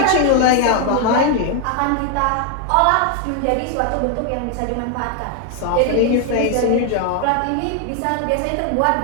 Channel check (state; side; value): different; both; correlation 0.01